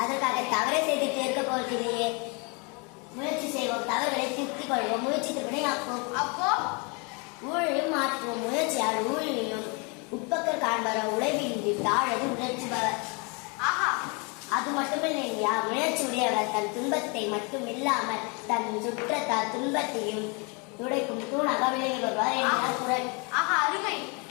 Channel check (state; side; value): quieter; right; 31.9 dB